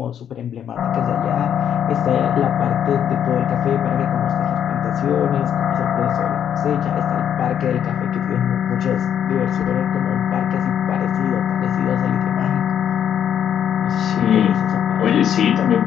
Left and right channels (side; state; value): right; quieter; 9.2 dB